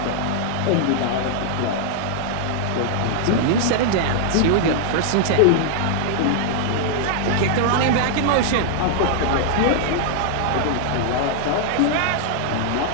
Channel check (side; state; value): both; different; correlation -0.01